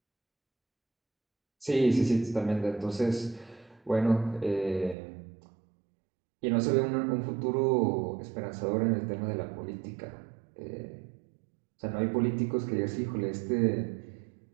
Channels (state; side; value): drops out; left; at 5.0 s